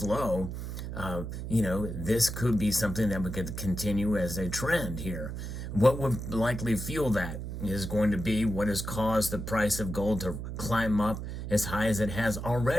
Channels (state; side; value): noise; right; hum, 6 dB below the sound